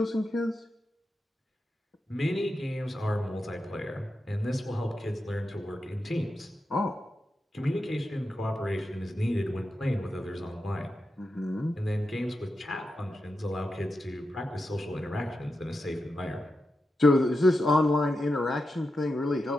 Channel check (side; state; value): both; normal; correlation 0.89